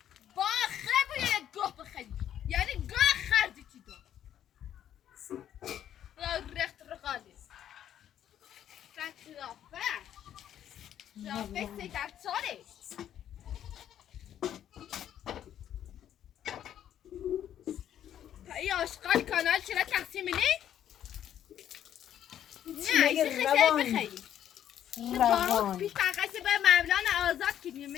یعنی گاه خردی چی دو رخت رقالی رافه سی در ساله ای آشقال کانال چرا تقسیم نی؟ نه ایسی خیلی بخیری روانی پیش تقصی به مولانا آزاد کنیم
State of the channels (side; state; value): right; quieter; 10.5 dB